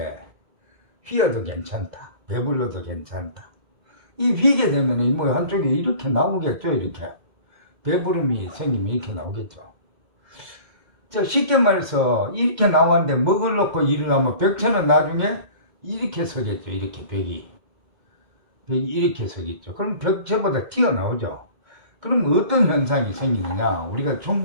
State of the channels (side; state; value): left; late; 2.0 ms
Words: 휘어도 괜찮다, 배불러도 괜찮다. 이 휘게 되면 뭐 한쪽에 이렇게 나오겠죠. 이렇게 배부름이 생기면 이렇게 나오겠죠. 쉽게 말해서 이렇게 나왔는데 먹을 놓고 일어나면 벽체는 나중에 이렇게 서겠죠. 이렇게 벽이 이렇게 서겠죠. 그럼 벽체보다 튀어나오죠. 그럼 어떤 현상이 생기느냐 우리가